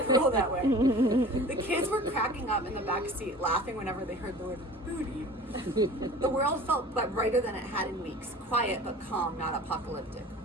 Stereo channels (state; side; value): normal; both; correlation 0.42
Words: cruel that way. The kids were cracking up in the back seat, laughing whenever they heard the word booty. The world felt but brighter than it had in weeks. Quiet but calm, not apocalyptic.